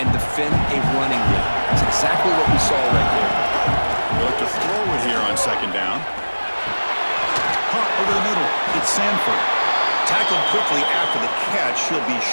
defend a running game. It's exactly what we saw right there. They'll have to throw it here on 2nd down. Hunt over the middle. It's Sanford. Tackled quickly after the catch. He'll be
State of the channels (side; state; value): both; inverted; correlation -1.00